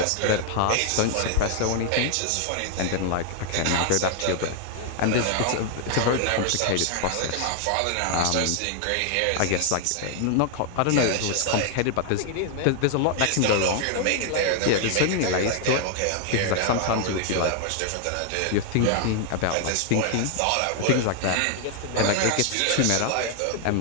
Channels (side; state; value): both; different; correlation 0.00